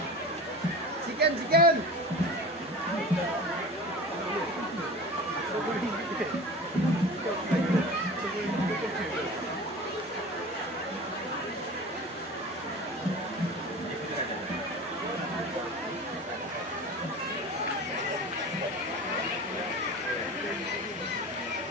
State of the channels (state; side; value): normal; both; correlation 0.34